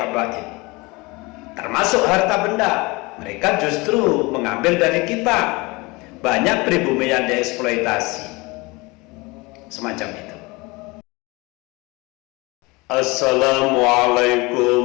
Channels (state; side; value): quieter; right; 24.5 dB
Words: termasuk harta benda. Mereka justru mengambil dari kita. Banyak pribumi yang dieksploitasi semacam itu.